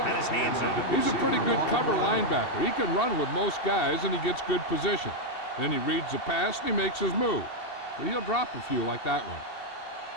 his hands on it. He's a pretty good cover linebacker. He can run with most guys, and he gets good position. Then he reads the pass, and he makes his move. But he'll drop a few like that one.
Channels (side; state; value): right; late; 2.7 ms